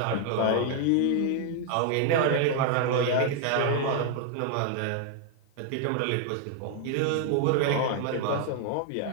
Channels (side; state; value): both; different; correlation 0.00